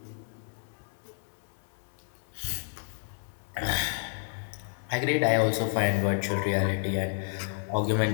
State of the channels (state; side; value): silent; right; 57 dB below the other